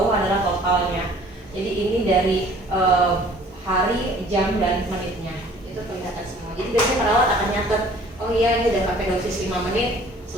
adalah totalnya. Jadi ini dari hari, jam dan menitnya. Itu kelihatan semua. Jadi biasanya perawat akan nyatet, oh iya ini udah pakai dosis 5 menit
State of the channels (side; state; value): both; normal; correlation 0.53